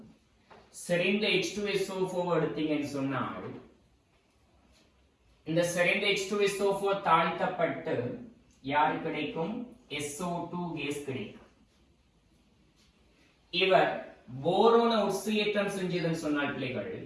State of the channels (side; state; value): both; identical; correlation 1.00